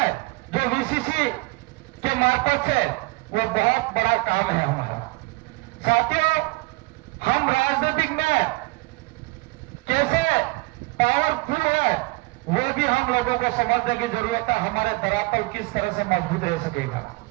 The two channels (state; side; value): quieter; left; 24.5 dB